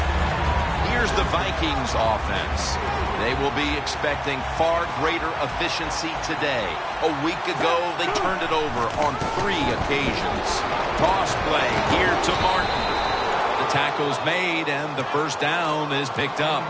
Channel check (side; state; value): both; identical; correlation 1.00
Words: Here's the Vikings offense. They will be expecting far greater efficiency today. A week ago, they turned it over on 3 occasions. Toss play here to Martin. The tackle's made, and the first down is picked up.